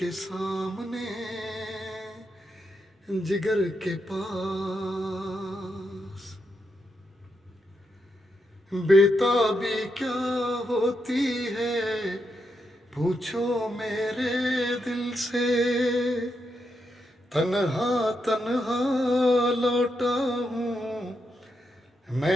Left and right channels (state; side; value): normal; both; correlation 0.83